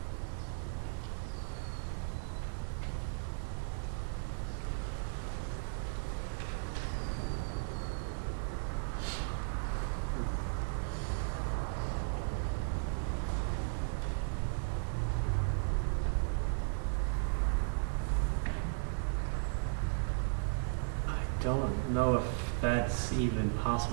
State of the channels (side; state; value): left; silent; digital silence